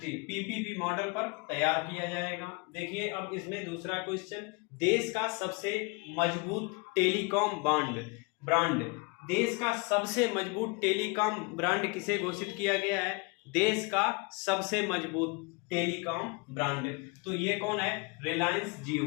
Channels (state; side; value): quieter; right; 29.6 dB